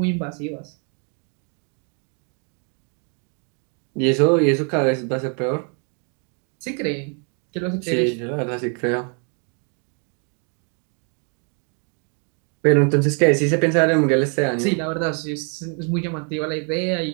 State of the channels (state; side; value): quieter; left; 39.6 dB